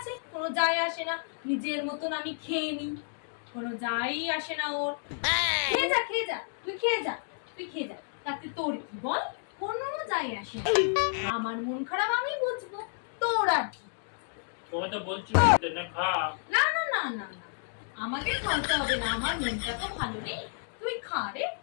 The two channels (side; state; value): right; silent; digital silence